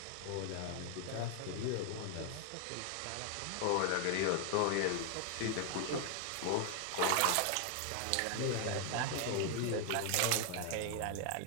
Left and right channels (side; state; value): both; different; correlation 0.00